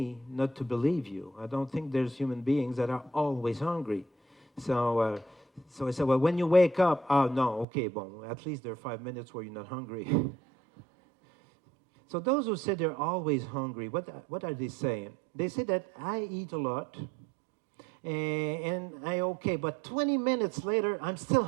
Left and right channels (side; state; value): left; drops out; at 7.7 s